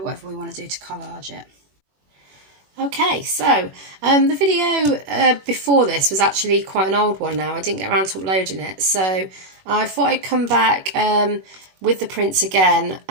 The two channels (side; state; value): left; late; 21 ms